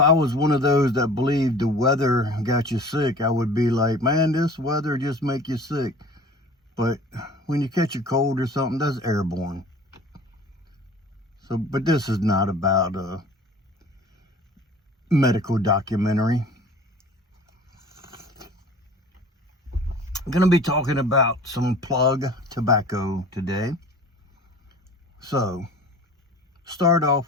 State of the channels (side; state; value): both; normal; correlation 0.44